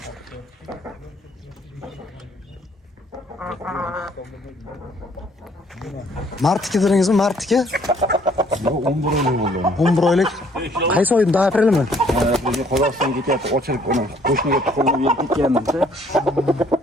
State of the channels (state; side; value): normal; both; correlation 0.62